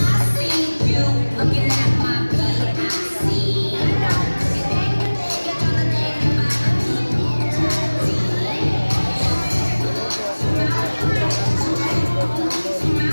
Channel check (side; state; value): both; inverted; correlation -1.00